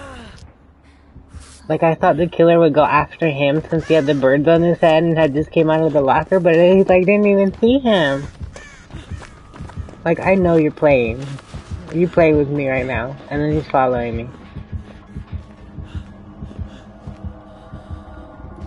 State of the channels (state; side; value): identical; both; correlation 1.00